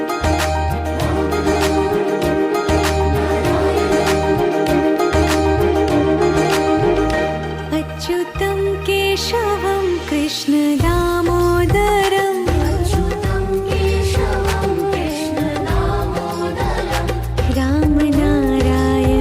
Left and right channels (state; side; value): identical; both; correlation 1.00